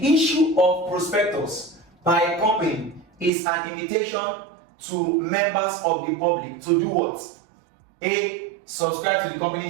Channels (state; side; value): drops out; left; at 3.3 s